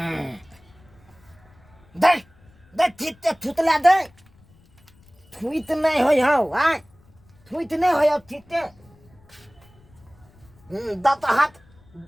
दे दे थिते थुतला दे थुइत नहीं होय हो आ थुइत नहीं होय हो थिते दत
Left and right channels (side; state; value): left; noise; rumble, 29 dB below the sound